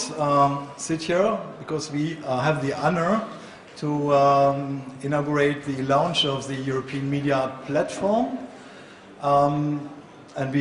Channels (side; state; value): both; identical; correlation 1.00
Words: sit here because we have the honor to inaugurate the launch of the European Media Art Platform. And